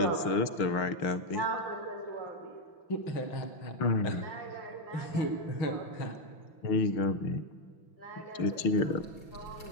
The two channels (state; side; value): late; right; 6.0 ms